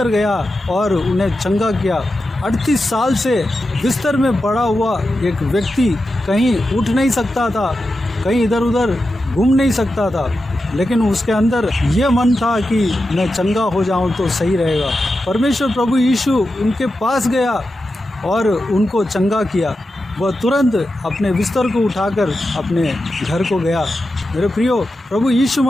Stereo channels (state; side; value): normal; both; correlation 0.90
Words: गया और उन्हें चंगा किया। 38 साल से बिस्तर में पड़ा हुआ एक व्यक्ति कहीं उठ नहीं सकता था, कहीं इधर उधर घूम नहीं सकता था, लेकिन उसके अंदर ये मन था कि मैं चंगा हो जाऊं तो सही रहेगा। परमेश्वर प्रभु यीशु उनके पास गया और उनको चंगा किया। वह तुरंत अपने बिस्तर को उठाकर अपने घर को गया। मेरे प्रियो, प्रभु यीशु